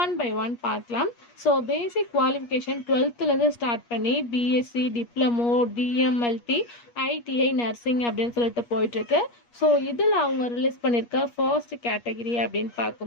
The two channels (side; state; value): right; late; 8.4 ms